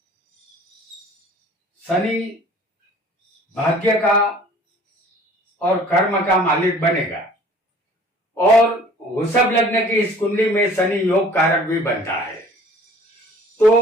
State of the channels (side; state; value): both; normal; correlation 0.50